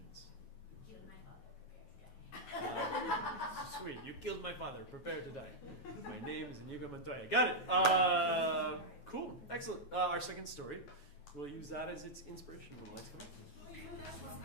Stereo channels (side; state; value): right; late; 9.4 ms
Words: You and my father prepare to die. Sweet, you killed my father, prepare to die. My name is Inigo Montoya. Got it. Cool, excellent. Our second story, we'll use that as its inspiration when the lights come up.